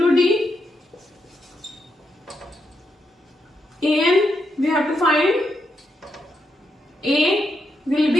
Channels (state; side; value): normal; both; correlation 0.82